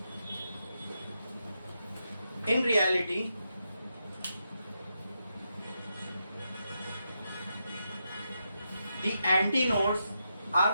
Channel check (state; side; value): inverted; both; correlation -0.84